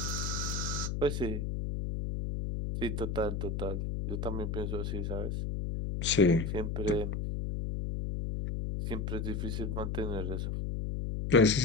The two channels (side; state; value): left; noise; hum, 2 dB below the sound